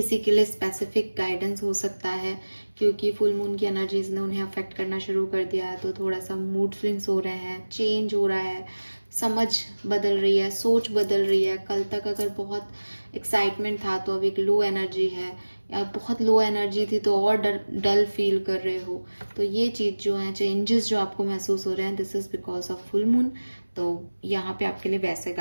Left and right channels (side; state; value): both; inverted; correlation -1.00